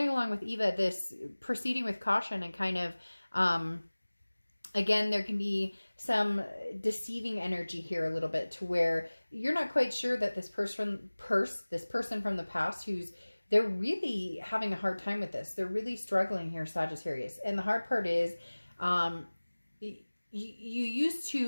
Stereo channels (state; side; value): inverted; both; correlation -1.00